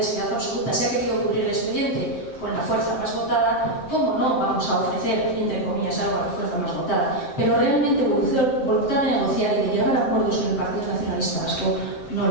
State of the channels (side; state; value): right; late; 7.7 ms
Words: seriedad absoluta. Se ha querido cubrir el expediente con la fuerza más votada. ¿Cómo no vamos a ofrecer, entre comillas, algo a la fuerza más votada? Pero realmente voluntad de negociar y de llegar a acuerdos con el Partido Nacionalista Vasco no